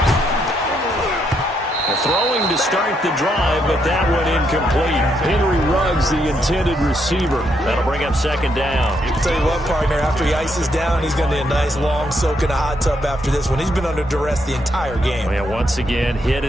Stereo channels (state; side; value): normal; both; correlation 0.76